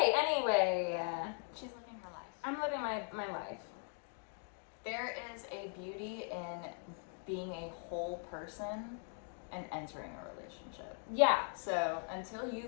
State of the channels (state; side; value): silent; right; 51 dB below the other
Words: anyway. She's living her life. I'm living my life. There is a beauty in being a whole person and entering a relationship. Yeah. So until you